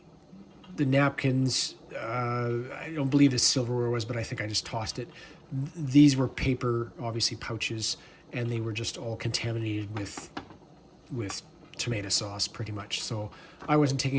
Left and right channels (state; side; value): identical; both; correlation 1.00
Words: the napkins, I don't believe the silverware was, but I think I just tossed it. These were paper, obviously, pouches, and they were just all contaminated with tomato sauce, pretty much. So I wasn't